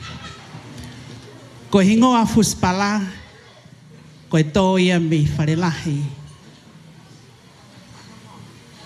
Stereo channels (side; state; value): both; identical; correlation 1.00